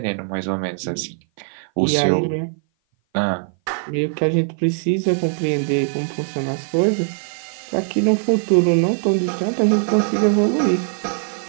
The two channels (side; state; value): left; silent; 57 dB below the other